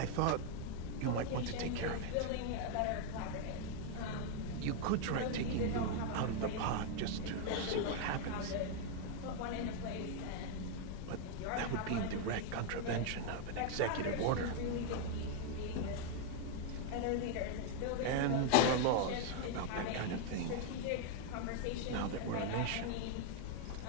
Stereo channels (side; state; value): both; different; correlation 0.00